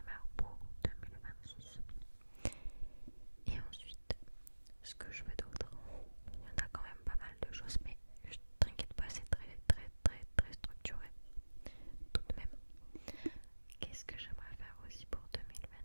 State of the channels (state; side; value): inverted; both; correlation -1.00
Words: pour 2026. Et ensuite, ce que je veux d'autre, il y en a quand même pas mal de choses, mais t'inquiète pas, c'est très structuré tout de même. Qu'est-ce que j'aimerais faire aussi pour